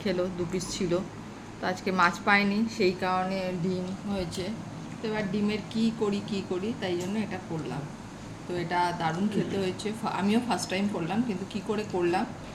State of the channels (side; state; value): both; identical; correlation 1.00